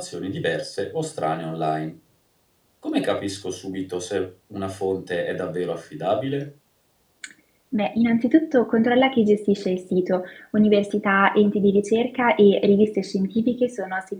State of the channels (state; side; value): identical; both; correlation 1.00